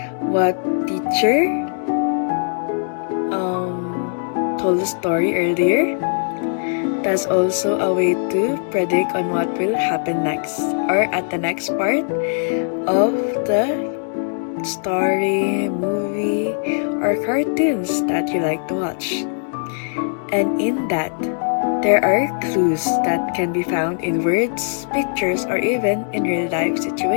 what teacher told the story earlier. That's also a way to predict on what will happen next or at the next part of the story, movie, or cartoons that you like to watch. And in that, there are clues that can be found in words, pictures, or even in real life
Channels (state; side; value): silent; right; digital silence